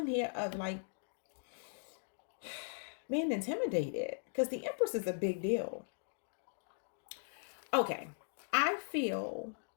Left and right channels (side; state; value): right; silent; digital silence